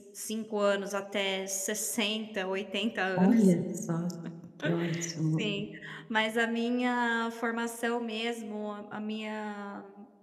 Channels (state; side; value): identical; both; correlation 1.00